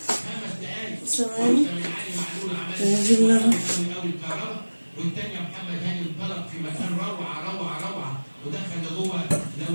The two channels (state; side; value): inverted; both; correlation -1.00